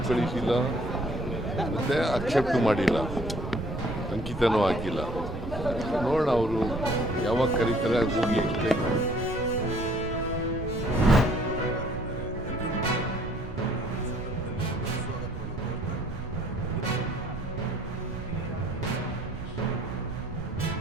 ಕಳಿಸಿಲ್ಲ, ಮತ್ತು ಅಕ್ಸೆಪ್ಟ್ ಮಾಡಿಲ್ಲ, ಅಂಕಿತನೂ ಹಾಕಿಲ್ಲ. ನೋಡೋಣ ಅವರು ಯಾವಾಗ ಕರೀತಾರೆ ಹೋಗಿ ಎಕ್ಸ್ಪ್ಲೈನ್ ಮಾಡಿ.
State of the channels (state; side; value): noise; right; rumble, 9 dB below the sound